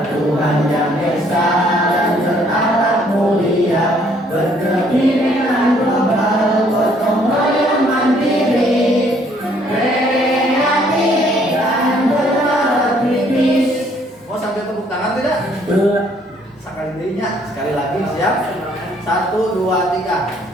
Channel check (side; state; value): both; normal; correlation 0.64